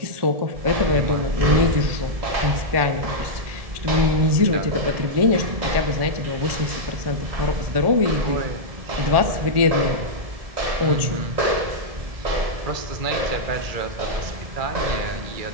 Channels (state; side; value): late; left; 1.7 ms